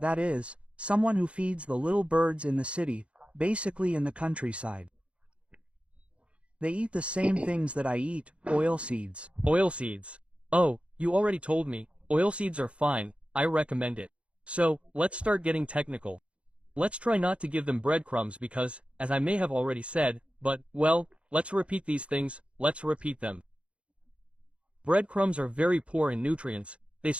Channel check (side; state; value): left; late; 0.060 ms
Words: that is, someone who feeds the little birds in the city, basically in the countryside. They eat the same things that I eat, oilseeds. Oilseeds. Oh, you already told me, oilseeds are fine, I recommend it. So, let's start getting technical. Let's try not to give them breadcrumbs because, as I may have already said, but, well, let's repeat these things, let's repeat them. Breadcrumbs are very poor in nutrients, they